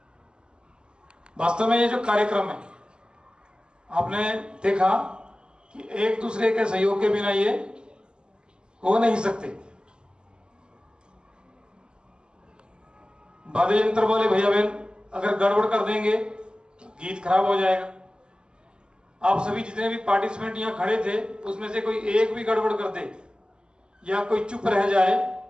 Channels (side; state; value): left; late; 0.048 ms